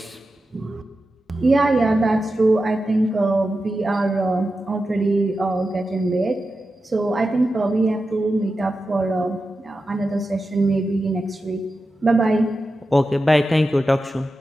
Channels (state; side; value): normal; both; correlation 0.91